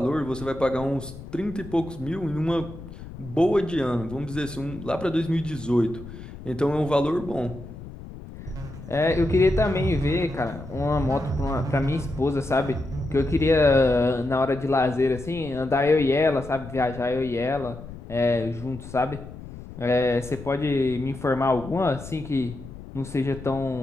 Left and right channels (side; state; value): left; noise; rumble, 14 dB below the sound